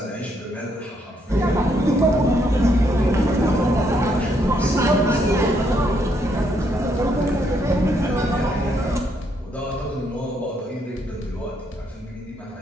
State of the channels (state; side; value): normal; both; correlation 0.74